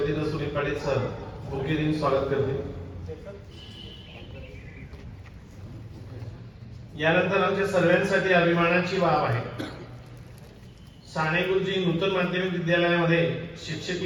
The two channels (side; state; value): both; identical; correlation 1.00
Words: सुनील पाटील सर बुके देऊन स्वागत करते. यानंतर आमच्या सर्वांसाठी अभिमानाची बाब आहे, साने गुरुजी नूतन माध्यमिक विद्यालयामध्ये